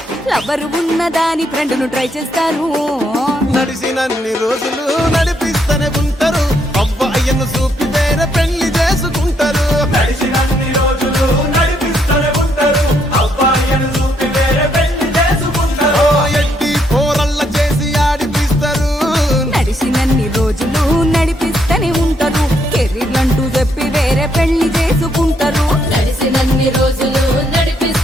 లవర్ ఉన్నదాని ఫ్రెండ్ ను ట్రై చేస్తారు నడిసినన్ని రోజులు నడిపిస్తూనే ఉంటారు అవ్వయ్యను చూపి వేరే పెళ్లి చేసుకుంటారు నడిచినన్ని రోజులు నడిపిస్తూనే ఉంటారు అబ్బాయిని చూపి వేరే పెళ్లి చేసుకుంటారు ఓ ఎడ్డి పోరల్ల చేసి ఆడిపిస్తారు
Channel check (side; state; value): both; normal; correlation 0.73